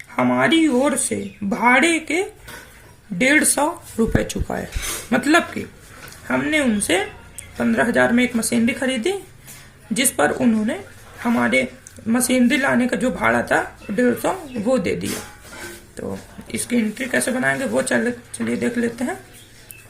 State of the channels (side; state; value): both; identical; correlation 1.00